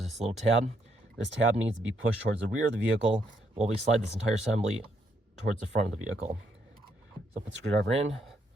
this little tab. This tab needs to be pushed towards the rear of the vehicle while we slide this entire assembly towards the front of the vehicle. So put the screwdriver in,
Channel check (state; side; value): normal; both; correlation 0.74